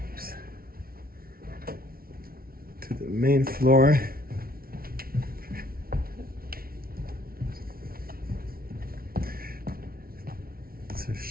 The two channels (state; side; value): late; left; 0.43 ms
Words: to the main floor. To